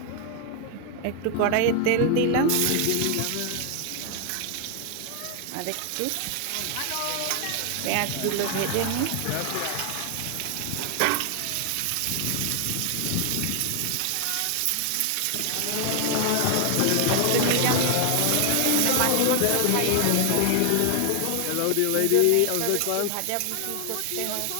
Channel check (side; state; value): both; different; correlation 0.00